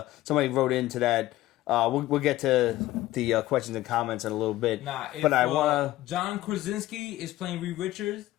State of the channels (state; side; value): quieter; right; 16.0 dB